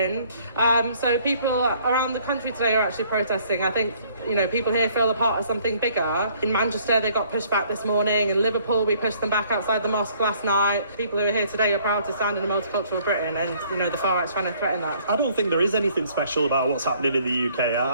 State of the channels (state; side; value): inverted; both; correlation -0.61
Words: So people around the country today are actually protesting. I think, people here feel a part of something bigger. In Manchester, they got pushed back this morning. In Liverpool, we pushed them back outside the mosque last night. People who are here today are proud to stand in a multicultural Britain, and, the far-right's trying to threaten that. I don't think there is anything special about what's happening in the UK.